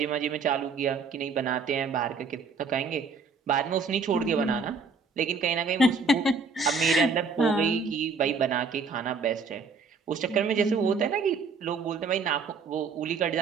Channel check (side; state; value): left; quieter; 4.8 dB